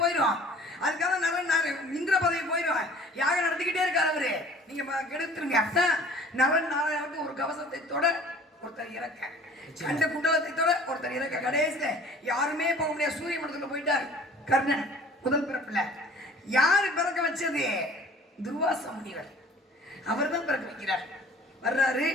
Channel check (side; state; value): both; normal; correlation 0.48